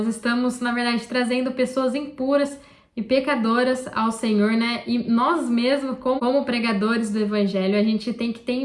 estamos, na verdade, trazendo pessoas impuras e pecadoras ao Senhor, né? E nós mesmos, como pregadores do evangelho, a gente tem que ter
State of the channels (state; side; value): identical; both; correlation 1.00